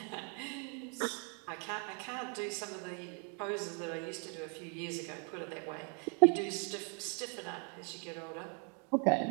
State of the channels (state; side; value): quieter; left; 38.7 dB